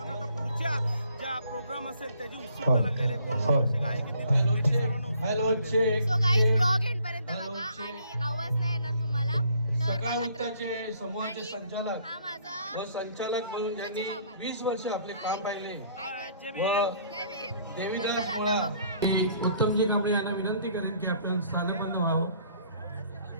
आता पुढच्या ज्या प्रोग्राम असेल त्याची उत्सुकता लागलेली आहे. कोण कसे गायक येतील त्याची सर्वांना उत्सुकता. सो गाईज ब्लॉग एंड पर्यंत बघा आणि आवाज नाही येणार तुम्हाला. तर सकाळ बघा. वृत्ताचे समूहाचे आणि संचालक हा माझा व संचालक म्हणून त्यांनी 20 वर्ष आपले काम पाहिले जय व भीम. देवीदास चला पोळा आता बघा. की उत्तमजी कांबळे यांना विनंती करेन की आपण स्थानपन्न व्हावं.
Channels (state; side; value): inverted; both; correlation -0.61